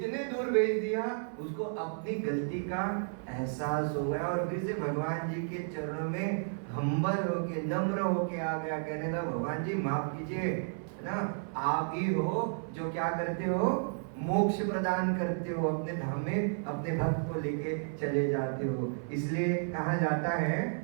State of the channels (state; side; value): silent; left; 56 dB below the other